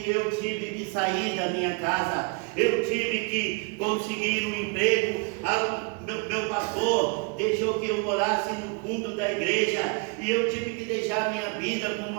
eu tive que sair da minha casa. Eu tive que conseguir um emprego. Meu pastor deixou que eu morasse no fundo da igreja, e eu tive que deixar minha vida com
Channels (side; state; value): left; quieter; 31.3 dB